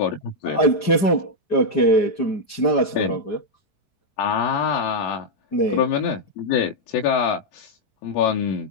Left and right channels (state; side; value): late; right; 5.0 ms